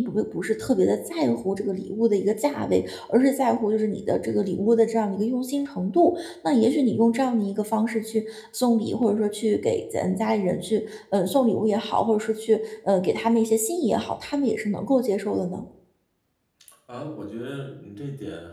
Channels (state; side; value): identical; both; correlation 1.00